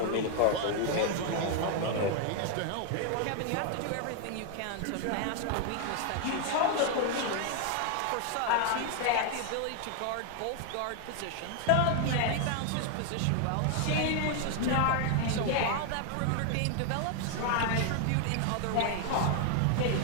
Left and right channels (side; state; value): both; different; correlation 0.00